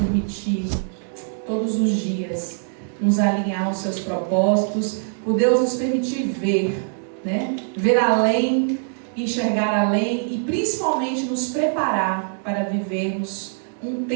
todos os dias nos alinhar aos seus propósitos, por Deus nos permitir ver, ver além, enxergar além e principalmente nos preparar para vivermos um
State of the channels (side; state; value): left; silent; digital silence